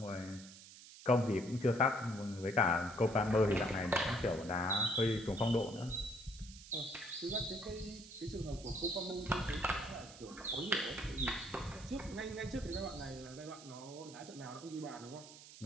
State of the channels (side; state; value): right; noise; hiss, 17 dB below the sound